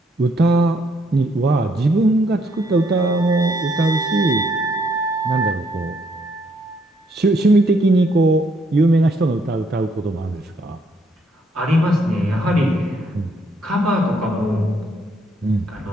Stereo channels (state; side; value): normal; both; correlation 0.71